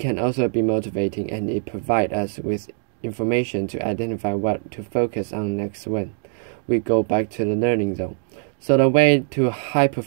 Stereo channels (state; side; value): silent; left; digital silence